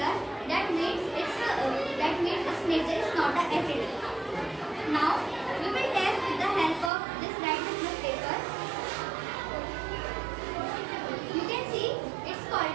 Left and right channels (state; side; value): drops out; left; at 6.9 s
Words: That means its nature is not acidic. Now we will test with the help of this red litmus paper. You can see it's called